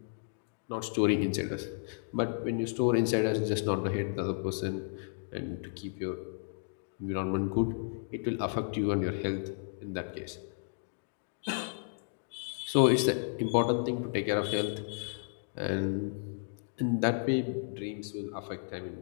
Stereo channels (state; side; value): silent; right; digital silence